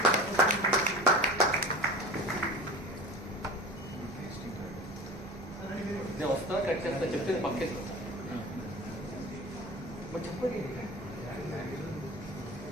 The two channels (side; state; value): both; normal; correlation 0.36